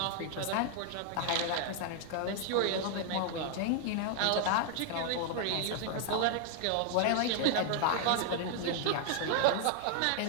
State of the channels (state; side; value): different; both; correlation 0.00